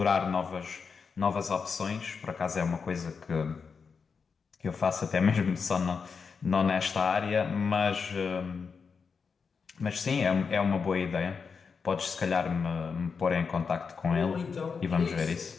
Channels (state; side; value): quieter; right; 5.5 dB